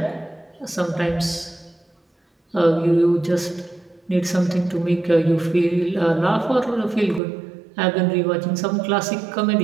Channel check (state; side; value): drops out; left; at 7.2 s